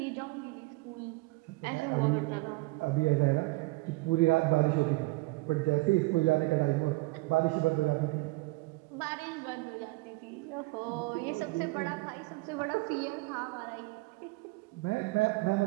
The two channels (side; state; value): left; quieter; 23.4 dB